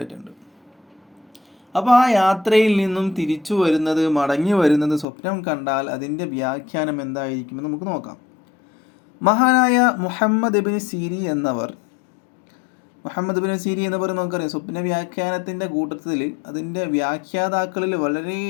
അപ്പോൾ ആ യാത്രയിൽ നിന്നും തിരിച്ചു വരുന്നത്, മടങ്ങി വരുന്നത് സ്വപ്നം കണ്ടാൽ അതിൻ്റെ വ്യാഖ്യാനം എന്തായിരിക്കുമെന്ന് നമുക്ക് നോക്കാം. മഹാനായ മുഹമ്മദ് ഇബ്നു സീരീൻ എന്നവർ നമുക്കറിയാം, സ്വപ്ന വ്യാഖ്യാനത്തിൻ്റെ കൂട്ടത്തിൽ അതിൻ്റെ വ്യാഖ്യാതാക്കളിൽ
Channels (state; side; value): drops out; right; at 5.1 s